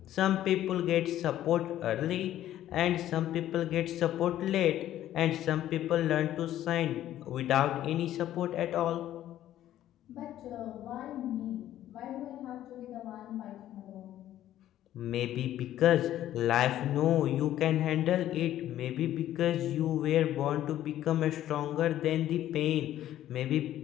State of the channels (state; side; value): quieter; right; 12.6 dB